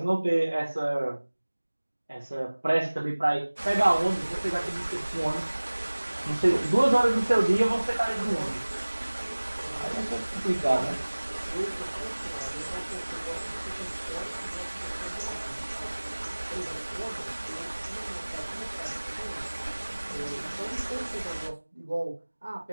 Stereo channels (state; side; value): inverted; both; correlation -1.00